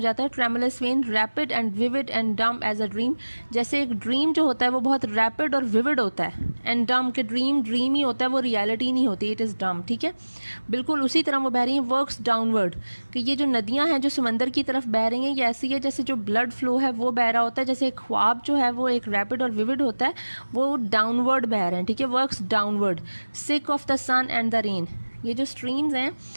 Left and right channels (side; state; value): both; inverted; correlation -1.00